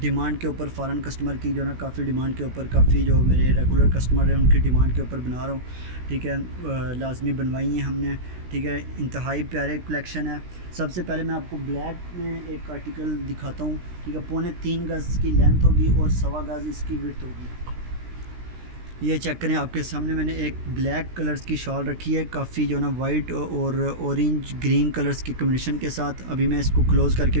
के ऊपर, फ़ॉरेन कस्टमर की जो ना काफ़ी डिमांड के ऊपर, काफ़ी जो मेरे रेगुलर कस्टमर हैं उनकी डिमांड के ऊपर बना रहा हूँ। ठीक है, लाजमी बनवाई हैं हमने। ठीक है, इंतहाई प्यारे कलेक्शन है। सबसे पहले मैं आपको ब्लैक में एक आर्टिकल दिखाता हूँ। ठीक है, 3.25 गज़ की लेंथ होगी और 1.25 गज़ इसकी विड्थ होगी। ये चेक करें, आपके सामने मैंने एक ब्लैक कलर्स की शॉल रखी है, काफ़ी जो ना वाइट और ऑरेंज ग्रीन कलर्स के कम्बिनेशन के साथ। अभी मैं इसको क्लोज़ करके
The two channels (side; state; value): left; late; 16 ms